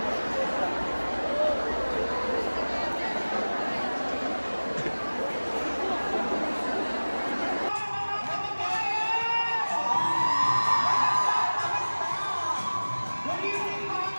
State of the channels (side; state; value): both; inverted; correlation -1.00